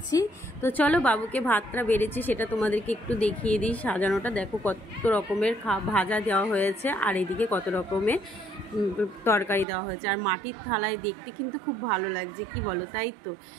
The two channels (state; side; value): drops out; left; at 9.7 s